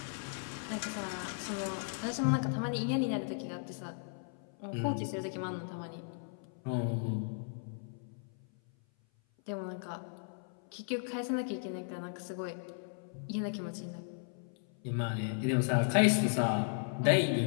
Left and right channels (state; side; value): silent; right; 54 dB below the other